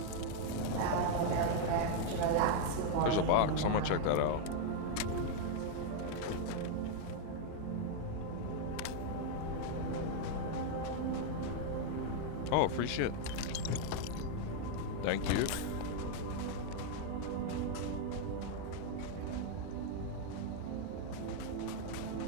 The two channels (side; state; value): both; different; correlation 0.00